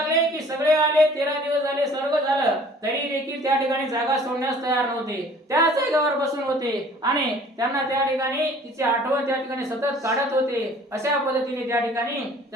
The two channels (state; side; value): normal; both; correlation 0.51